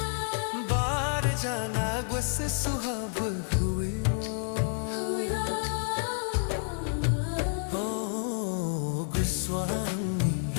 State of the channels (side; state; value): right; silent; 58 dB below the other